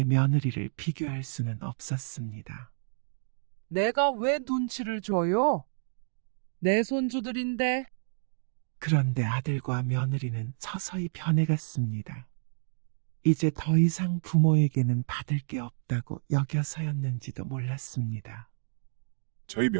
며느리를 비교할 수는 없었습니다. 내가 왜 눈치를 줘요? 내 손주들인데. 그런데 아들과 며느리는 서서히 변해갔습니다. 이제 더 이상 부모에게는 받을 게 없다고 여겨서였는지도 몰랐습니다. 저희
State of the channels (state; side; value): silent; left; digital silence